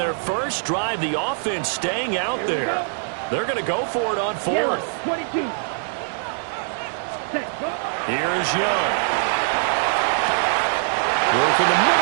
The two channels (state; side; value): silent; left; digital silence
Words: first drive, the offense staying out there. They're going to go for it on 4th. Here is Young. Work in the